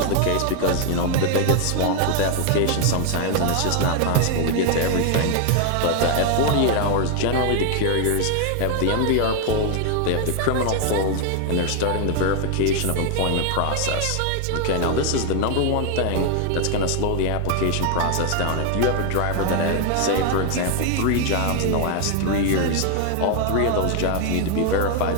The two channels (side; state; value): both; different; correlation 0.00